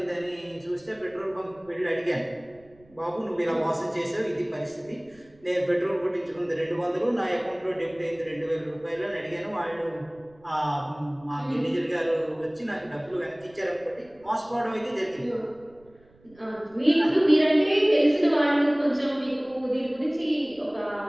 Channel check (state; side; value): noise; right; rumble, 28 dB below the sound